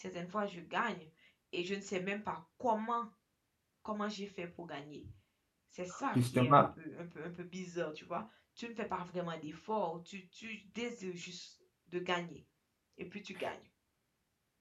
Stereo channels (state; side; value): identical; both; correlation 1.00